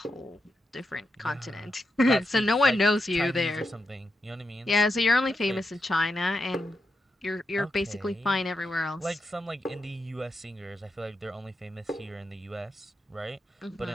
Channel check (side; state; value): both; normal; correlation 0.86